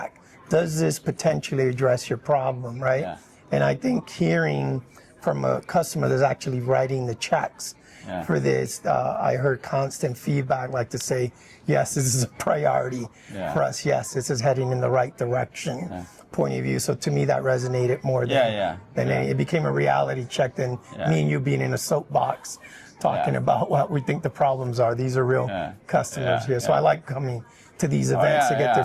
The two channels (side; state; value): both; identical; correlation 1.00